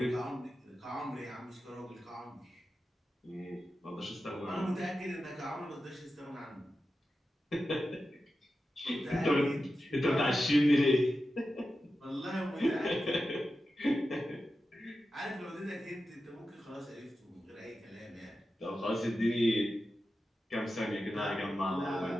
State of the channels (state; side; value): normal; both; correlation 0.92